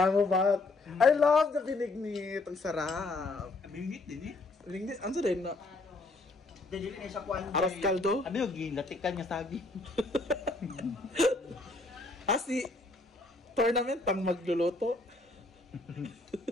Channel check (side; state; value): right; quieter; 3.2 dB